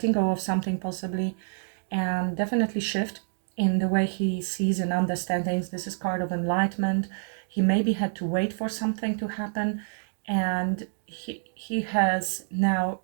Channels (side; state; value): left; silent; digital silence